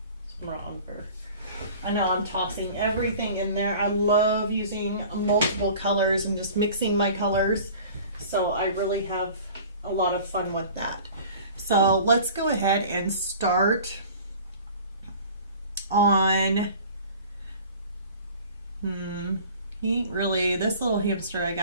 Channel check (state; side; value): inverted; both; correlation -0.44